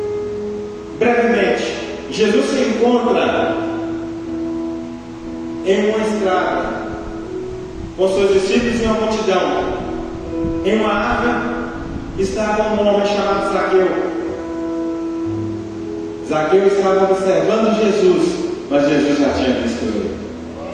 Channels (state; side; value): identical; both; correlation 1.00